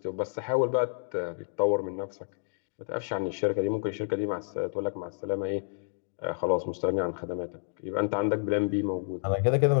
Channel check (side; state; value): right; silent; digital silence